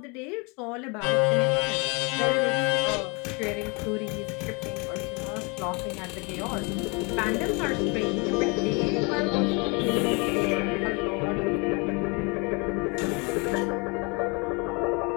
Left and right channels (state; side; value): quieter; right; 30.9 dB